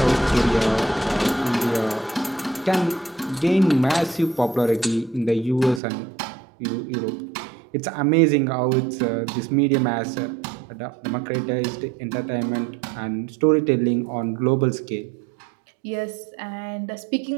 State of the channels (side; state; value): left; drops out; at 5.8 s